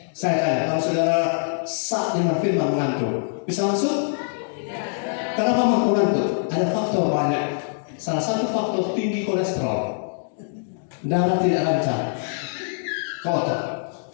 Saya tanya, kalau saudara saat dengan firman mengantuk, bisa masuk? Kenapa mengantuk? Ada faktor banyak. Salah satu faktor tinggi kolesterol, darah tidak lancar, kotor.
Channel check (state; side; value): silent; right; digital silence